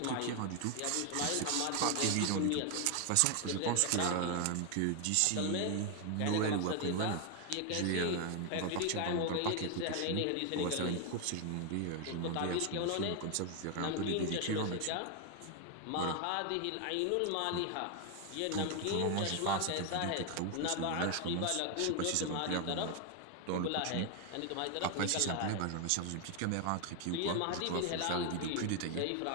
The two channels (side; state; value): both; different; correlation 0.01